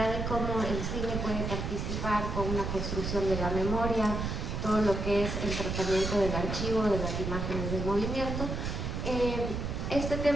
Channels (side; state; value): right; noise; rumble, 3 dB below the sound